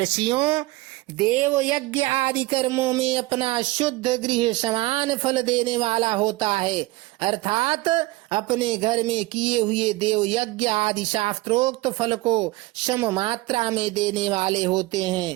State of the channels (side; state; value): left; quieter; 20.1 dB